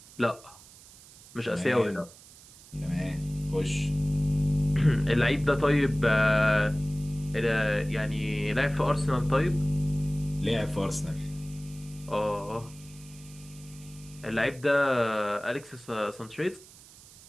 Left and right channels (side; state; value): right; noise; hiss, 22 dB below the sound